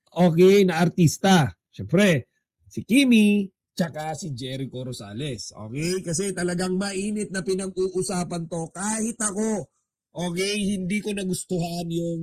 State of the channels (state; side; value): identical; both; correlation 1.00